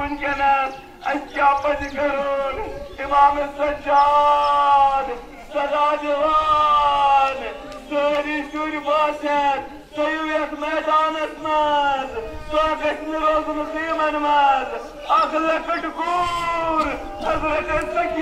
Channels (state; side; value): identical; both; correlation 1.00